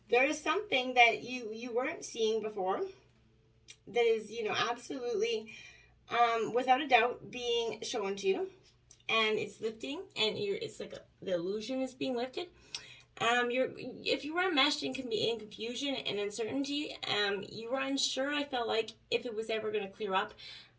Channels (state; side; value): identical; both; correlation 1.00